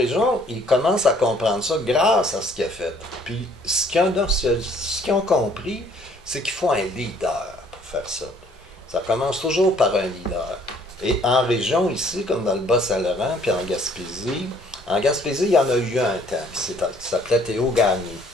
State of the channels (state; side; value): normal; both; correlation 0.60